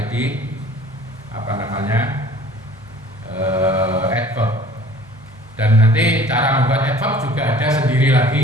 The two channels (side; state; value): both; normal; correlation 0.50